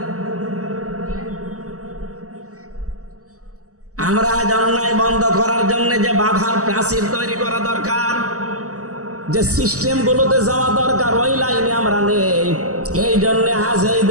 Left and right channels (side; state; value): left; late; 0.66 ms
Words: আমরা অন্যায় বন্ধ করার জন্য যে বাধার প্রাচীর তৈরি করা দরকার, যে সিস্টেম গুলোতে যাওয়া দরকার, ওই লাইনে আমরা নেই। এই জন্য আজ এই